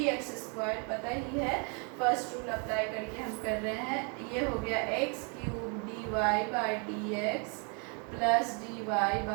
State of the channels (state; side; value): quieter; left; 36.3 dB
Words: स्क्वायर, पता ही है, फर्स्ट रूल अप्लाई करके हम कर रहे हैं। ये हो गया x cube dy by dx plus dy